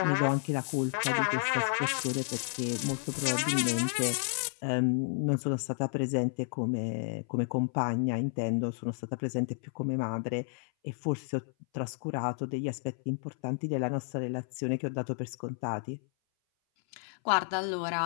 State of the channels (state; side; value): silent; right; 57 dB below the other